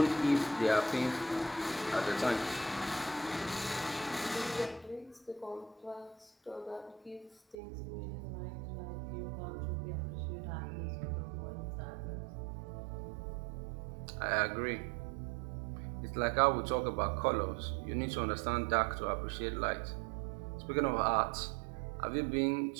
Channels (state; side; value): drops out; left; at 7.6 s